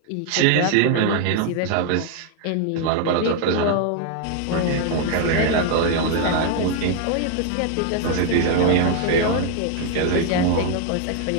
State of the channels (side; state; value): both; different; correlation 0.00